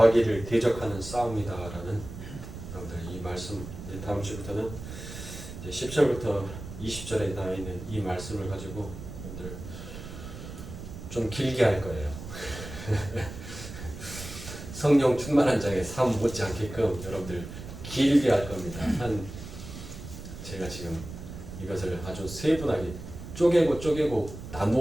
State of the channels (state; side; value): noise; right; rumble, 11 dB below the sound